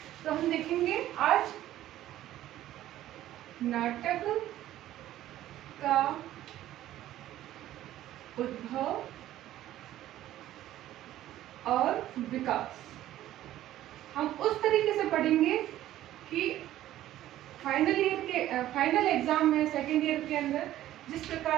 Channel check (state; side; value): quieter; left; 13.6 dB